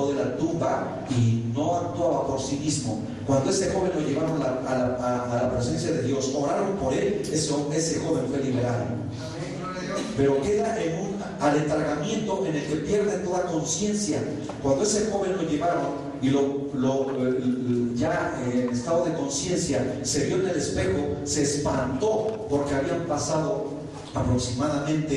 de la tumba y no actuaba por sí mismo. Cuando ese joven lo llevaron a la presencia de Dios, oraron por él, ese joven fue liberado. Pero queda en un aletargamiento en el que pierde toda conciencia. Cuando ese joven lo llevaron y ya en estado de conciencia, se vio en el espejo, se espantó porque habían pasado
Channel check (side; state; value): both; identical; correlation 1.00